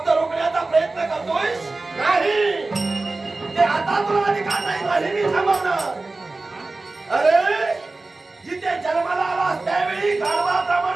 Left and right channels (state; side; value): quieter; left; 3.3 dB